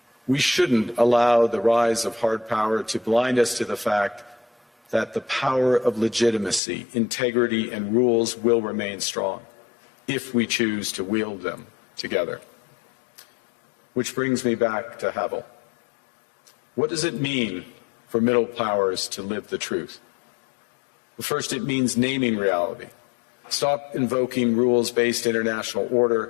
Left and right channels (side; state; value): right; drops out; at 6.6 s